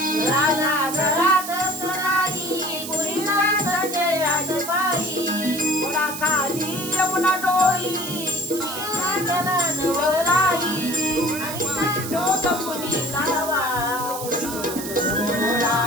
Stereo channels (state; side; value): noise; right; hiss, 8 dB below the sound